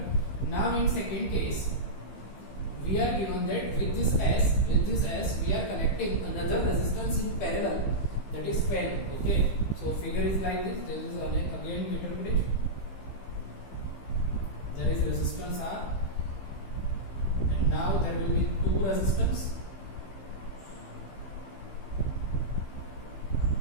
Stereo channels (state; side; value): late; right; 15 ms